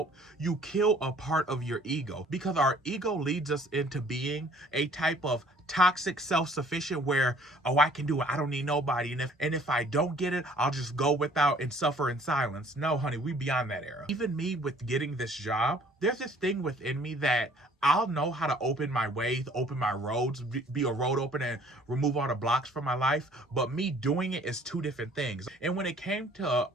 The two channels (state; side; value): normal; both; correlation 0.56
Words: you kill a part of your ego, because our ego leads us into being a type of toxic self-sufficient where, oh, I can do it, I don't need nobody, and if I don't get it, I'll just go without and suffer in silence. No, honey, we beyond that era. Even me with getting this job, there's this thing within me that I'll know how to open my ways, open my roads, be a road opener and remove all the blocks from my life, but me doing it is two different things. And when it came to